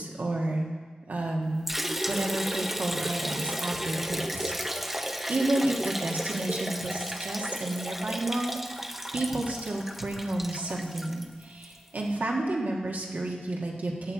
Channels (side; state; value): both; normal; correlation 0.91